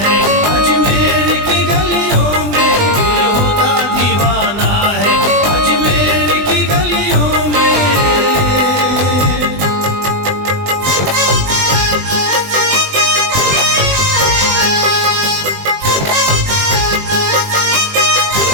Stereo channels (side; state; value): left; late; 20 ms